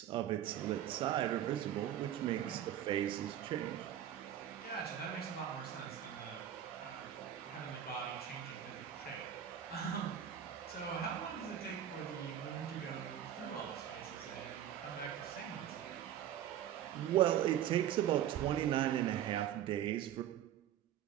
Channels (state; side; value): quieter; left; 10.7 dB